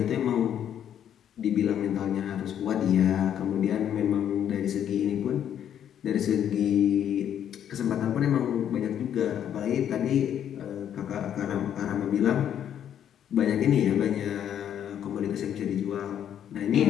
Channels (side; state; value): right; quieter; 9.7 dB